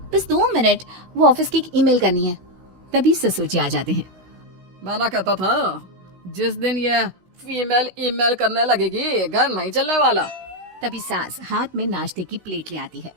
बस 2 मिनट, वो ऑफिस की एक ईमेल करनी है। तभी ससुर जी आ जाते हैं। मैं ना कहता था, जिस दिन ये फीमेल ईमेल करने लगेगी घर नहीं चलने वाला। तभी सास हाथ में नाश्ते की प्लेट ले आती है।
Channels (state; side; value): late; left; 16 ms